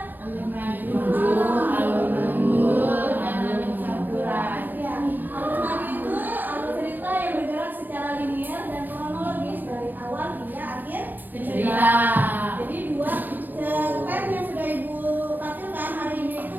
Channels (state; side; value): late; left; 0.087 ms